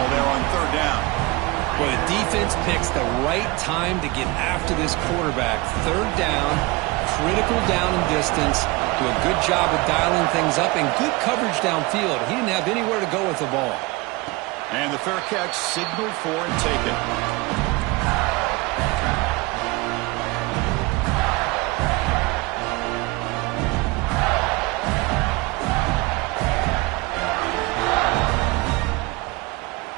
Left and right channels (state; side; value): quieter; left; 23.6 dB